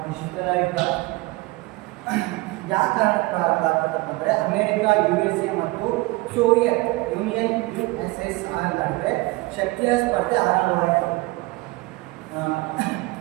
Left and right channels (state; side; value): quieter; left; 22.1 dB